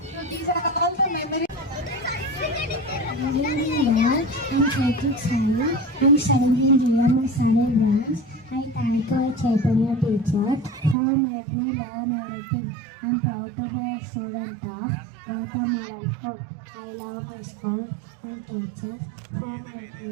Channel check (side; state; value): left; drops out; at 11.0 s